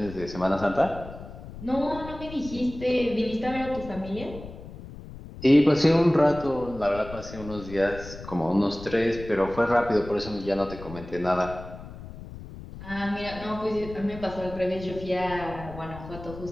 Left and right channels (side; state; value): left; noise; rumble, 13 dB below the sound